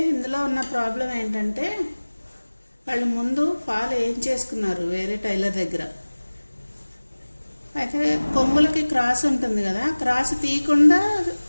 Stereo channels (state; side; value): inverted; both; correlation -1.00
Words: ఇందులో ఉన్న ప్రాబ్లం ఏంటంటే వాళ్ళు ముందు ఫాల్ ఏం చేసుకున్నారు వేరే టైలర్ దగ్గర. అయితే కొంగులకి క్రాస్ ఉంటుంది కదా, క్రాస్ తీయకుండా